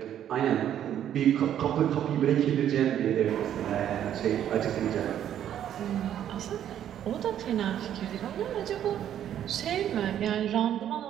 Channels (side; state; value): left; quieter; 10.5 dB